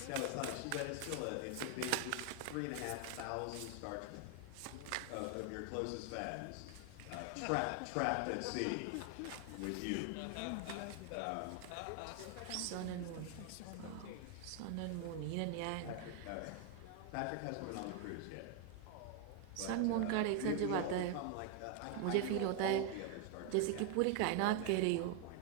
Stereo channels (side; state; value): both; different; correlation 0.01